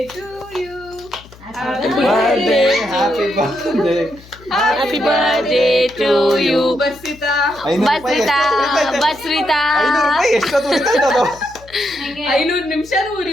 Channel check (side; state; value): left; noise; hum, 22 dB below the sound